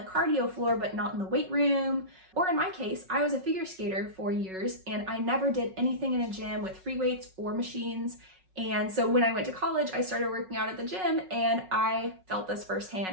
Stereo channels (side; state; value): left; late; 5.4 ms